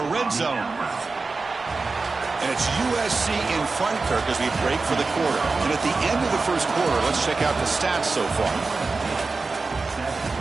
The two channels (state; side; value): quieter; left; 4.0 dB